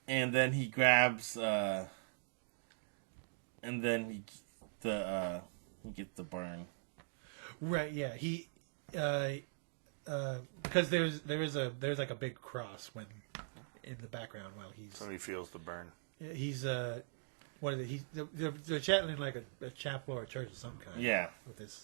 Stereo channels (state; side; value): silent; left; digital silence